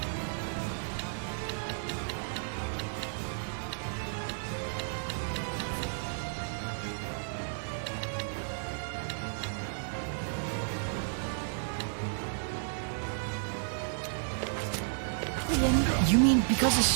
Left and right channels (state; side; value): silent; left; 56 dB below the other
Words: You mean because his